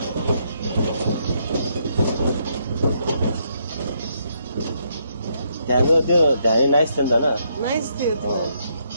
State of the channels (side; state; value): both; inverted; correlation -0.75